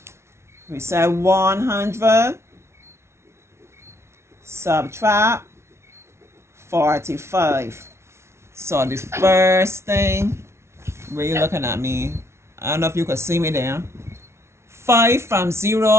we said 100 subtract 45. So the first thing, where you looking at me? I don't know if you could see me there. 5 from 0,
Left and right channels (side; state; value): left; late; 0.13 ms